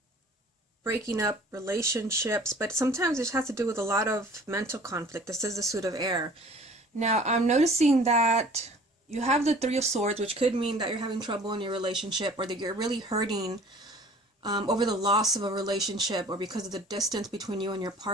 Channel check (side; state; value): both; normal; correlation 0.49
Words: breaking up relationships, but sometimes it has to do with a lot of mental conflict. This is the Suit of Air. Now, I'm noticing that you have the Three of Swords, which could mean that you're having trouble in your relationship, or that you're really hurting over the loss of a relationship, or because of the distance between you and your